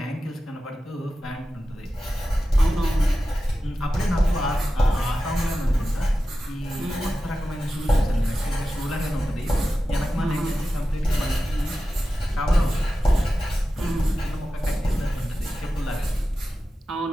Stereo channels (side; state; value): both; normal; correlation 0.93